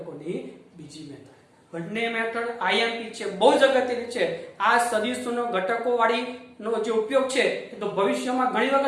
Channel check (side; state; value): both; identical; correlation 1.00